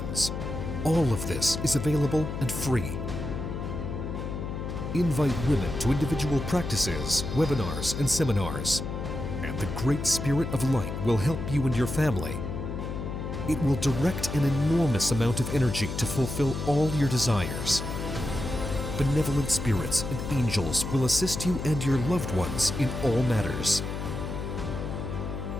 All of this is available and free. Invite women to individual practices, webinars, and seminars. And the Great Spirit of Light will help you and your family. It will direct an enormous amount of energy to fulfill all your desires. Benevolent spirits and angels will assist you and your loved ones in all matters.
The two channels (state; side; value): noise; left; hum, 5 dB below the sound